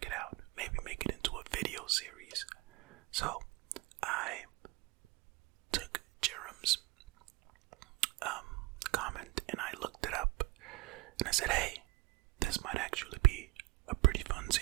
it out. Maybe make it into a video series. So I took Jerem's comment and I looked it up and I said, hey, this might actually be a pretty fun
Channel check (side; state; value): left; quieter; 22.9 dB